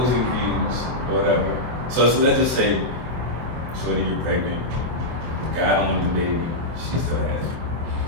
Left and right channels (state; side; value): late; left; 24 ms